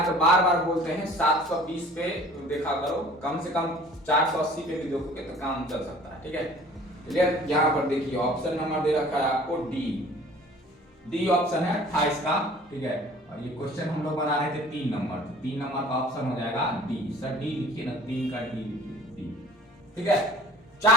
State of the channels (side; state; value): both; normal; correlation 0.48